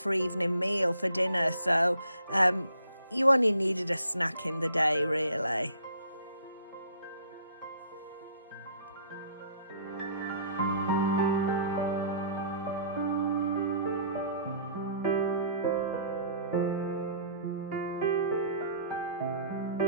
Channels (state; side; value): inverted; both; correlation -0.56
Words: evening meal for dinner. So you only needed a snack in the day, really.